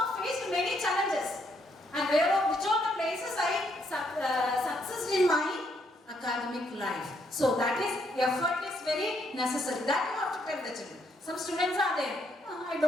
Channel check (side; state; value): both; normal; correlation 0.73